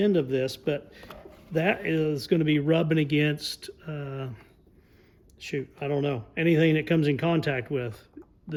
of this, but that is going to be rubbing against, I don't know, anything that comes in contact with.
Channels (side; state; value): both; identical; correlation 1.00